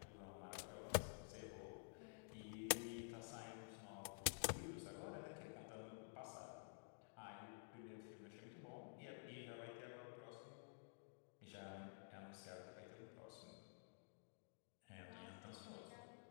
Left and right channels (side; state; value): right; silent; digital silence